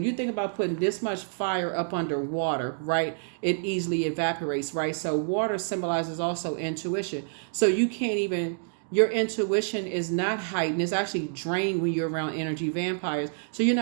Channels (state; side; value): silent; left; digital silence